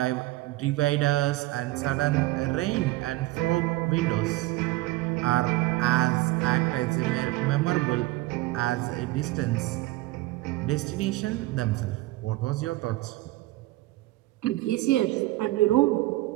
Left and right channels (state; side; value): quieter; left; 18.7 dB